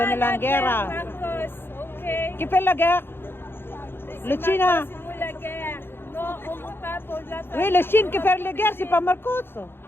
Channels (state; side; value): late; right; 0.11 ms